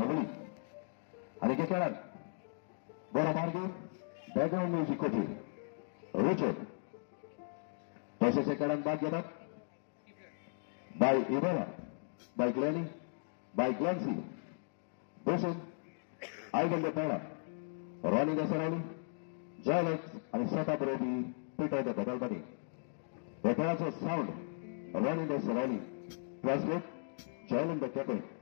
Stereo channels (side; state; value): right; silent; digital silence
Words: आणि के खेळात बरो मार्गे बॅकग्राऊंड म्युझिक होते रिचर्ड. तसेच खेळात भाग घेतात बाय इबेला, बाय ग्लॅनी, बाय ग्लॅन्सी, बसून आयगंडे पहिला रॉनी दसरावली, जयलेक्स आणि स्वतः बरोबरी पीटर बदलबानी. या खेळाचं साऊंड रॉनी दसरावली, ट्रान्सलेट जयलन द कॅप्टन